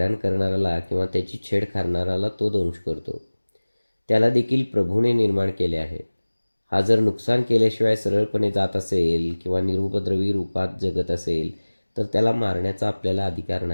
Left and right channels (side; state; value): both; inverted; correlation -1.00